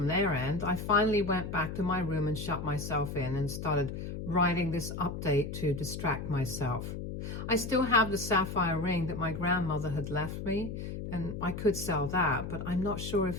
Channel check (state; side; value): noise; left; hum, 6 dB below the sound